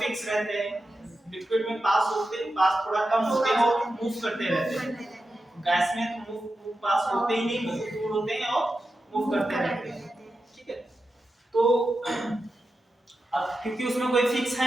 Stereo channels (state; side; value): normal; both; correlation 0.90